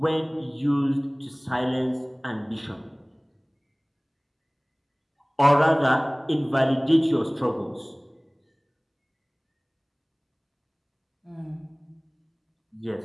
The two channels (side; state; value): both; identical; correlation 1.00